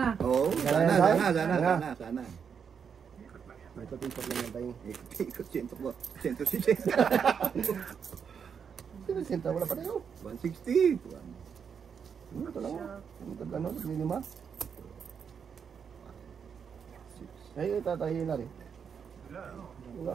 Oo, sana. Ito tikot lang yan tayo. Ikot 160. Sino sinta? Wala pa tayo. 160. Ito lang. Ito gano'n. Lima. Ay, tatayin na rin. Wala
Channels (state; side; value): quieter; left; 6.9 dB